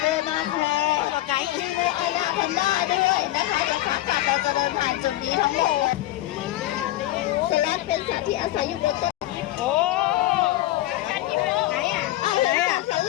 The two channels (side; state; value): right; quieter; 15.6 dB